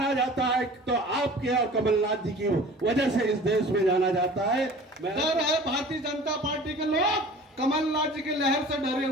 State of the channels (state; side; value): normal; both; correlation 0.43